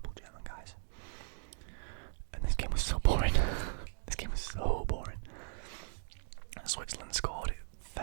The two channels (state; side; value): silent; left; digital silence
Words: of German guys. And this game was so boring. This game was so boring. Switzerland scored it